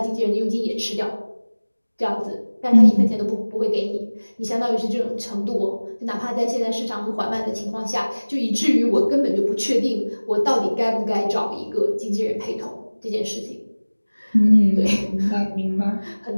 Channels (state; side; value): inverted; both; correlation -1.00